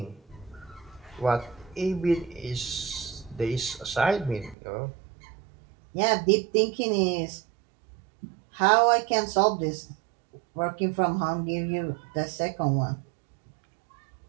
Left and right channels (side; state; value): left; drops out; at 4.5 s